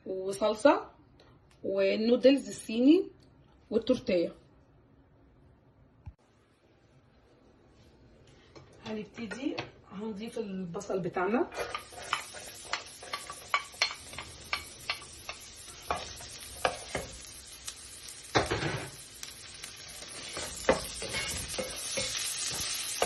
وصلصه، والنودلز الصيني والتورتيه. هنبتدي هنضيف البصل بتاعنا،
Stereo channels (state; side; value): identical; both; correlation 1.00